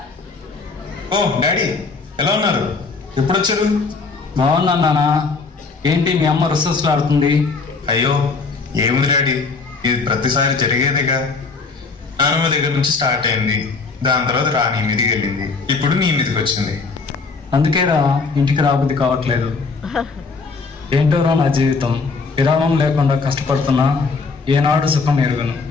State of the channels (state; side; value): quieter; right; 4.4 dB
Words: ఓ డాడీ, ఎలా ఉన్నారు? ఎప్పుడు వచ్చారు? బాగున్నా నాన్న. ఏంటి మీ అమ్మ రుసరుసలాడుతుంది? అయ్యో ఏముంది డాడీ, ఇది ప్రతిసారి జరిగేదిగా. నాన్నమ్మ దగ్గర నుంచి స్టార్ట్ అయింది, దాని తర్వాత రాణి మీదకి వెళ్ళింది, ఇప్పుడు నీ మీదకి వచ్చింది. అందుకేరా ఇంటికి రాబుద్ది కావట్లేదు. ఏంటోరా నా జీవితం, విరామం లేకుండా కష్టపడుతున్నా ఏనాడు సుఖం ఎరుగను.